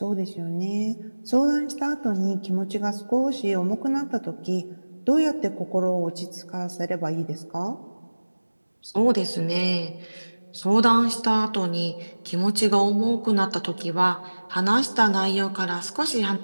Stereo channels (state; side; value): inverted; both; correlation -1.00